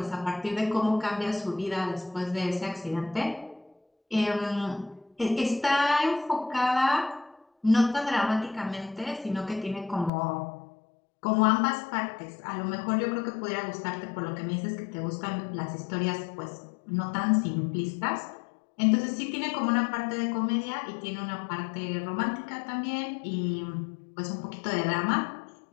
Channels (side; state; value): right; drops out; at 10.1 s